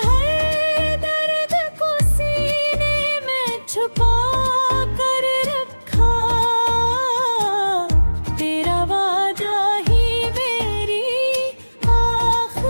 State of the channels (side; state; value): both; inverted; correlation -1.00